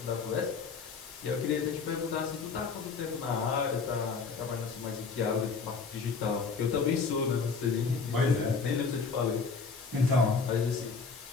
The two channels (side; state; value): right; quieter; 5.0 dB